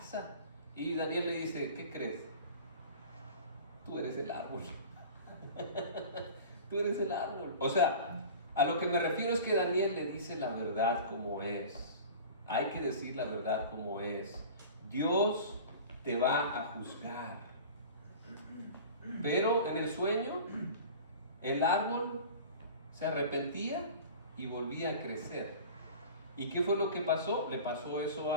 Y Daniel le dice: ¿qué crees? Tú eres el árbol. Tú eres el árbol. O sea, a lo que me refiero es que Daniel le dice la verdad como es. Hay que decir la verdad como es. Dios te va a juzgar. Pero en el sueño, el árbol se arrepentía y volvía a crecer. ¿Y qué fue lo que pasó? Le pasó eso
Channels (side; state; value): both; inverted; correlation -0.39